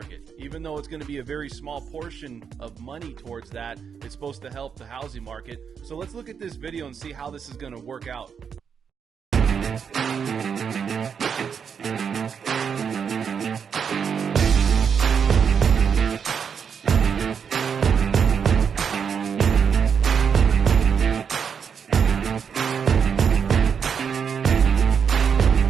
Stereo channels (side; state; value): left; quieter; 6.9 dB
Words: Even though it's going to be a very small portion of money towards that, it's supposed to help the housing market. So let's look at this video and see how this is going to work out.